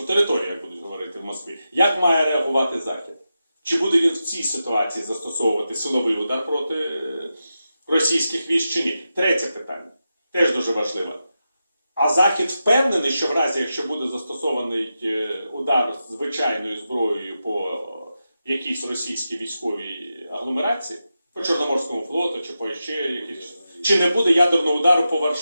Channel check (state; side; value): inverted; both; correlation -0.90